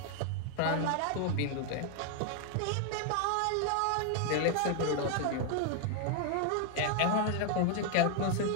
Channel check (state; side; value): different; both; correlation 0.00